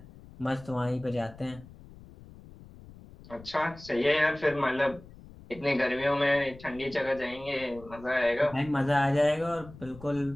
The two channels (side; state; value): left; noise; rumble, 19 dB below the sound